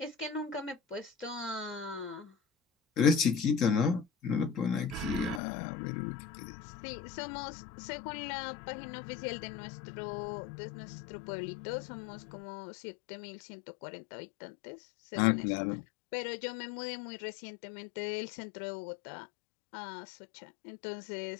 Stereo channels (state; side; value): drops out; right; at 5.4 s